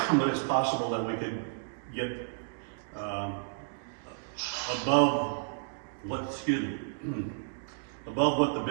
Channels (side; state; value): left; silent; digital silence